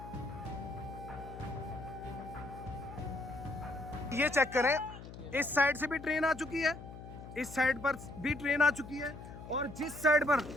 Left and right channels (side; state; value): left; noise; hum, 13 dB below the sound